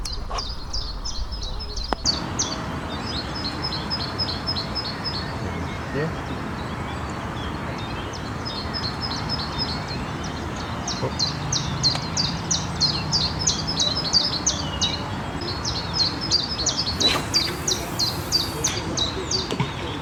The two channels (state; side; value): identical; both; correlation 1.00